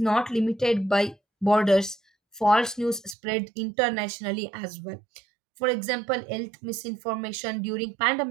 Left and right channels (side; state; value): left; drops out; at 3.2 s